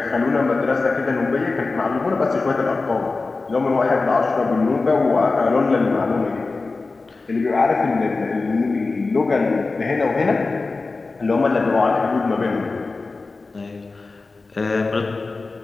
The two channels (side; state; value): right; quieter; 3.8 dB